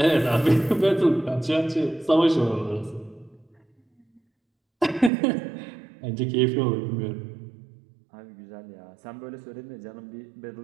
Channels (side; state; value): left; drops out; at 5.1 s